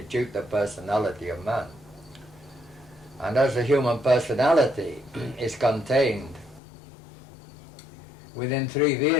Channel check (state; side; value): drops out; right; at 6.6 s